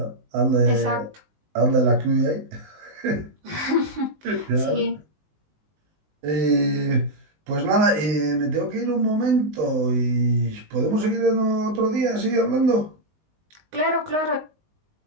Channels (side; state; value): left; late; 19 ms